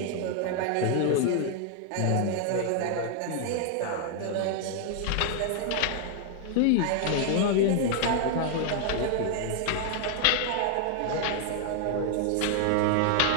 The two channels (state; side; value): different; both; correlation 0.00